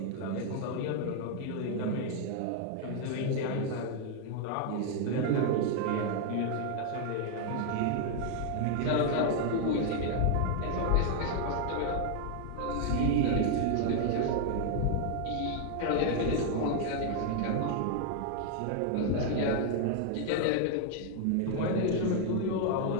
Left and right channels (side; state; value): both; different; correlation 0.00